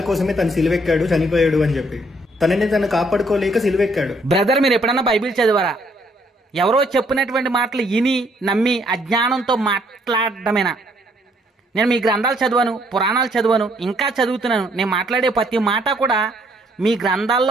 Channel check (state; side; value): normal; both; correlation 0.67